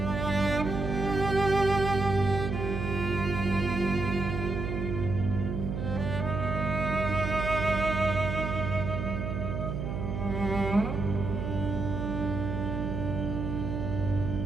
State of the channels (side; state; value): right; noise; hum, 4 dB below the sound